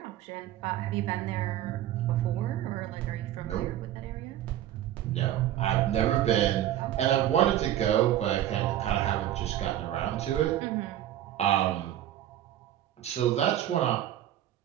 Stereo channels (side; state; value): left; quieter; 12.4 dB